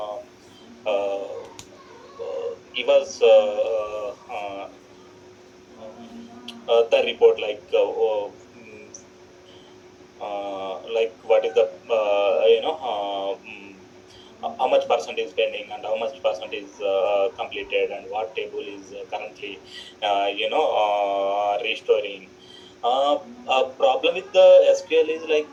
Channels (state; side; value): identical; both; correlation 1.00